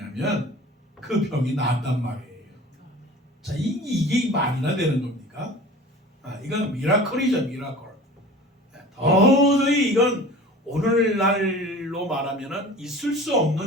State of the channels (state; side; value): normal; both; correlation 0.40